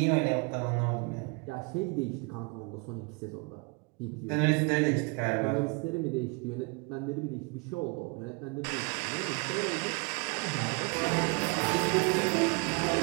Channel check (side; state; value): left; quieter; 31.3 dB